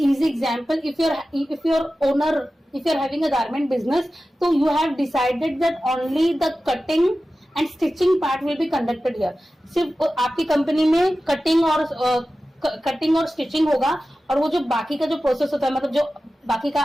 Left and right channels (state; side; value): normal; both; correlation 0.94